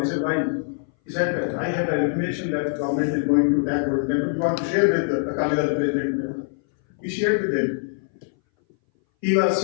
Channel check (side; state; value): right; silent; 60 dB below the other